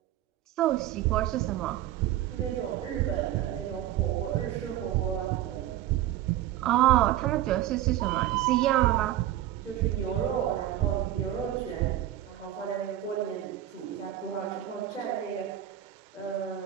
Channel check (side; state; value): left; quieter; 12.9 dB